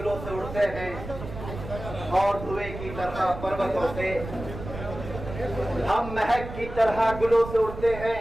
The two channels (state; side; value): noise; right; rumble, 10 dB below the sound